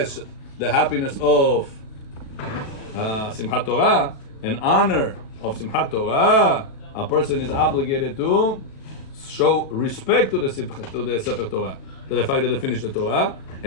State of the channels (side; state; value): right; late; 36 ms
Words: the happiness of Simchat Torah, an honor of Simchat Torah, a person is obligated to show respect to the Sefer Torah, to the fact that they finished the Torah,